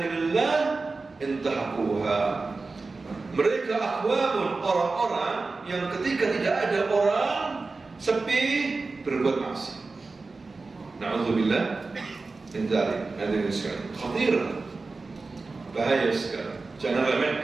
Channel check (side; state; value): left; quieter; 3.8 dB